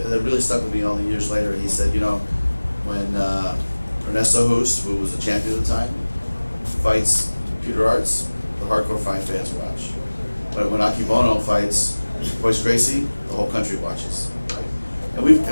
really stuck with me all the years later. He said, when Ernesto Hoost, who was a champion at the time, fights Peter Arts, the hardcore fight fans watch. But when Aki Bono fights Boyce Gracie, the whole country watches. And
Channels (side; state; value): both; inverted; correlation -1.00